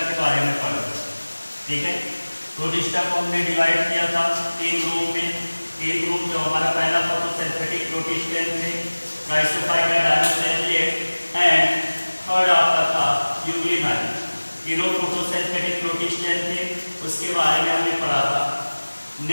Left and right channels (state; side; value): inverted; both; correlation -1.00